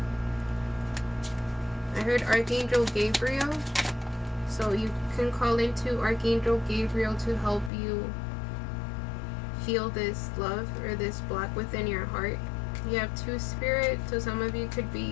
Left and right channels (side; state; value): right; drops out; at 7.7 s